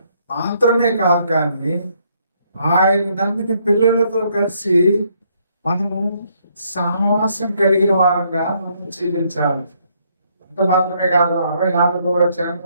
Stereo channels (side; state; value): both; inverted; correlation -0.71